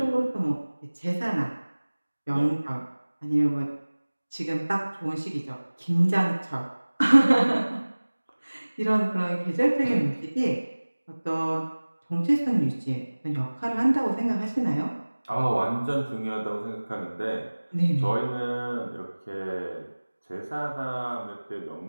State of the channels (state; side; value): inverted; both; correlation -1.00